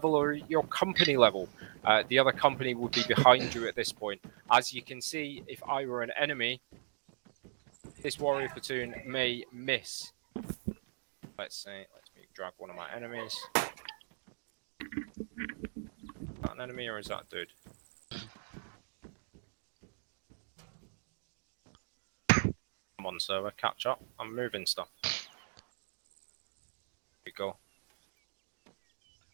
or your company level. The other company would be behind you at this point. As you can see, if I were an enemy, this warrior platoon may miss. Let's me drag one of my enemies. Is that an enemy or is that a dude? Come on, server, catch up. I'm moving stuff. Here we go.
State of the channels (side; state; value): left; silent; digital silence